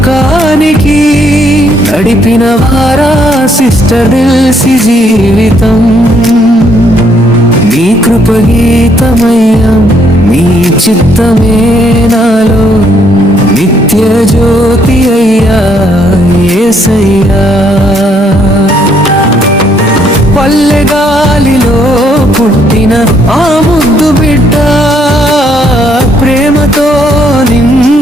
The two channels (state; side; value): normal; both; correlation 0.70